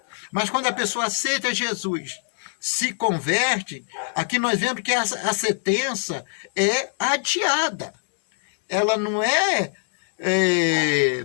mas quando a pessoa aceita Jesus, se converte, aqui nós vemos que a sentença é adiada. Ela não é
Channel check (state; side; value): silent; right; 63 dB below the other